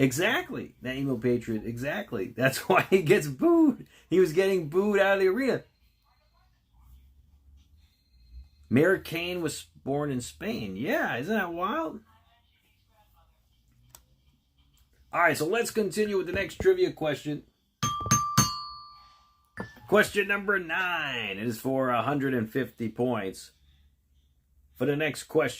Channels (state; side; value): identical; both; correlation 1.00